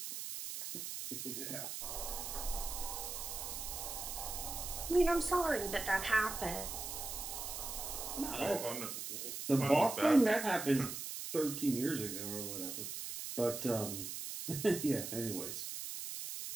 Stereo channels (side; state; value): right; noise; hiss, 6 dB below the sound